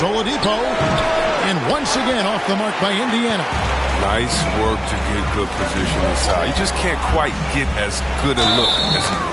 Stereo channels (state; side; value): identical; both; correlation 1.00